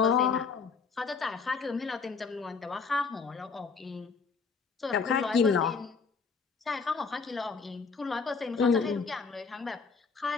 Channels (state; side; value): quieter; right; 5.1 dB